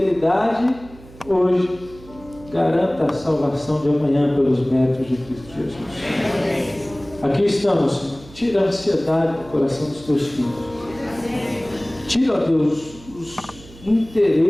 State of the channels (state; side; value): noise; right; hum, 21 dB below the sound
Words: hoje garanta a salvação de amanhã pelos méritos de Cristo Jesus. Aqui estamos, Senhor. Tira a ansiedade do coração dos Teus filhos. Tira, ó Deus, os